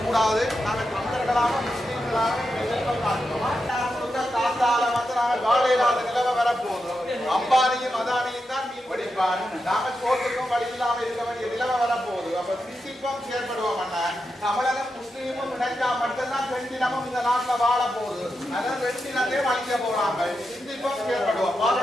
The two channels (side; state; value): both; normal; correlation 0.87